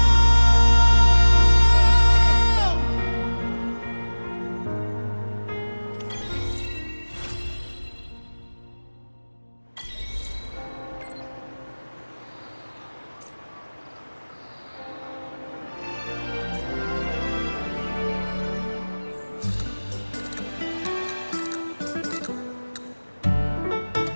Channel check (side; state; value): both; inverted; correlation -1.00